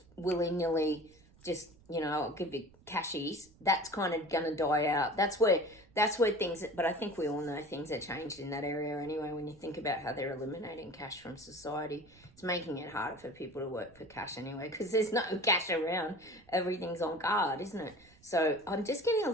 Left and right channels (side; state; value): right; noise; rumble, 27 dB below the sound